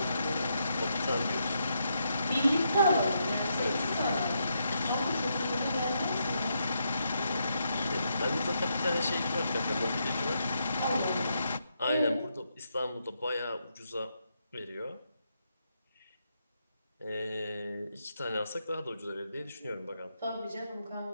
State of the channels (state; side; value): inverted; both; correlation -0.80